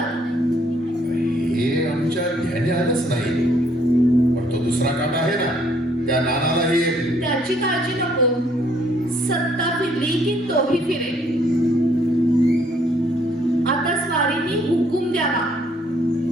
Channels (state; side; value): normal; both; correlation 0.66